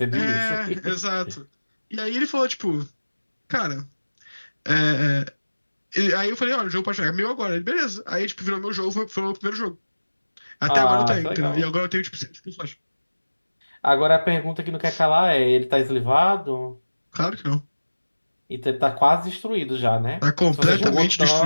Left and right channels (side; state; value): both; inverted; correlation -1.00